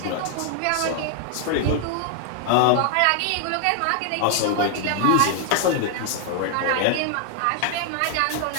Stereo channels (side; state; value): both; different; correlation 0.00